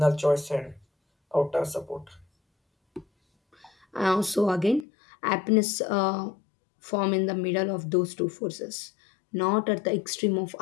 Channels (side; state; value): right; drops out; at 4.9 s